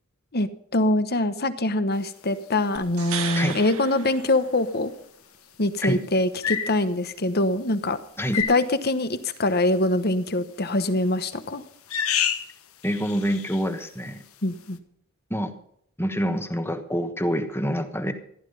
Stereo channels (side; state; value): both; normal; correlation 0.31